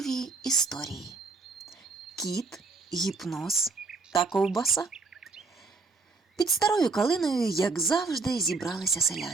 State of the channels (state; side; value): quieter; left; 4.2 dB